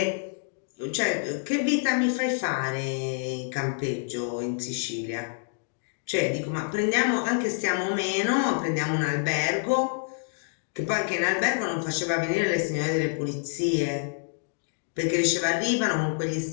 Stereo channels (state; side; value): silent; right; digital silence